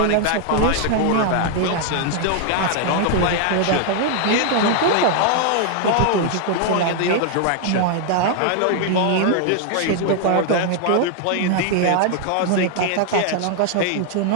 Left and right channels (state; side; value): different; both; correlation 0.00